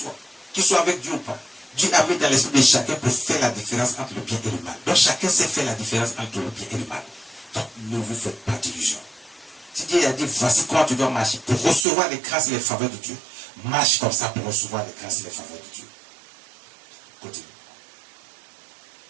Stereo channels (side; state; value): left; drops out; at 11.9 s